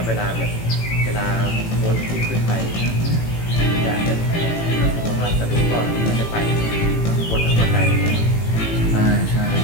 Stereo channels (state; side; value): late; right; 18 ms